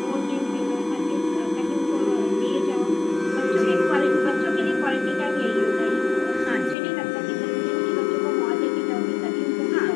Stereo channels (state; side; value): drops out; right; at 6.8 s